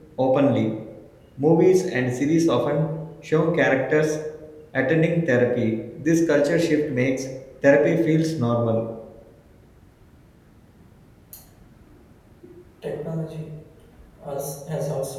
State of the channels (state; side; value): identical; both; correlation 1.00